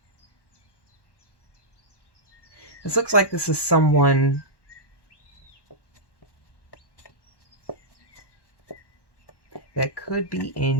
this looks like this is someone that could be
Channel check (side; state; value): right; late; 1.1 ms